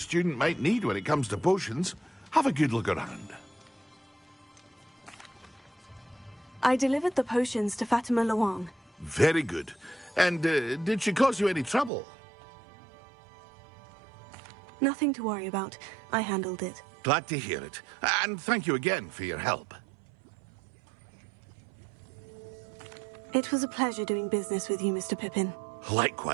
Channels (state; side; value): drops out; left; at 11.9 s